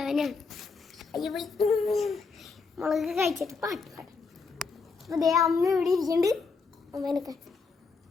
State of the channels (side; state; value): right; quieter; 4.6 dB